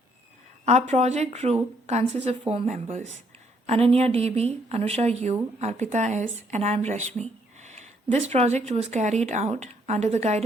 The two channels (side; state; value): both; normal; correlation 0.69